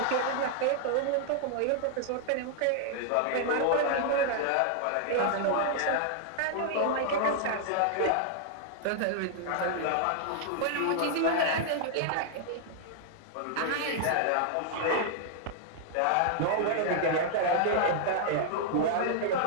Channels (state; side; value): different; both; correlation -0.01